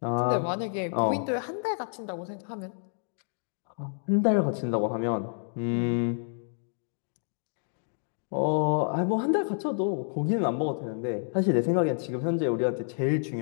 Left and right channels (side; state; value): right; silent; digital silence